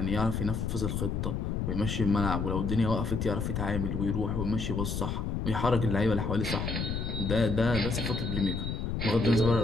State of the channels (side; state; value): left; noise; rumble, 2 dB below the sound